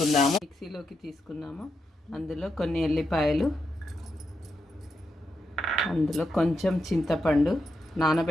అందులో కొన్ని ఎల్లిపాయలు, అందులో కొంచెం చింతపండు,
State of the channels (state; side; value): normal; both; correlation 0.84